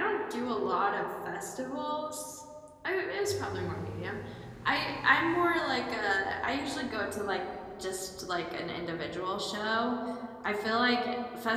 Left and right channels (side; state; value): both; identical; correlation 1.00